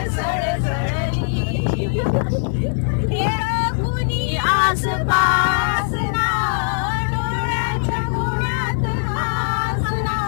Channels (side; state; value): right; silent; digital silence